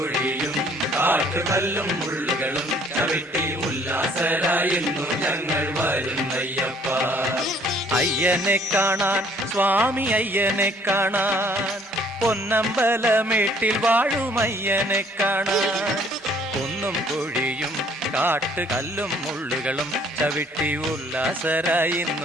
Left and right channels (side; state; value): both; normal; correlation 0.60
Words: കാട്ടുകല്ലും മുള്ളുകളും ചവിട്ടി ഉല്ലാസരായിരുന്നു ഞങ്ങൾ വരുന്നയ്യപ്പ. അയ്യനെ കാണാൻ സ്വാമി അയ്യനെ കാണാൻ പൊന്നമ്പലമേട്ടിൽ വാഴും അയ്യനെ കാണാൻ. കുന്നും കുഴിയും കാട്ടുകല്ലും മുള്ളുകളും ചവിട്ടി ഉല്ലാസരായി